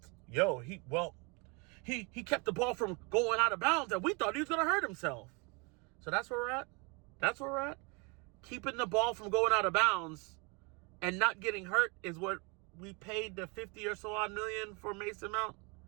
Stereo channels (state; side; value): quieter; left; 30.4 dB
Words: yo, he kept the ball from going out of bounds and we thought he was going to hurt himself. So that's where we're at. That's where we're at. Keeping the ball from going out of bounds and not getting hurt is what we paid the 50 or so odd million for Mason Mount.